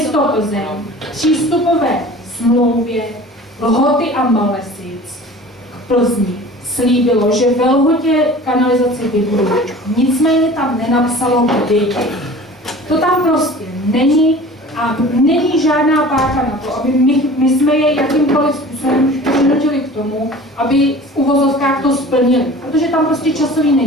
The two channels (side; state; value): both; normal; correlation 0.42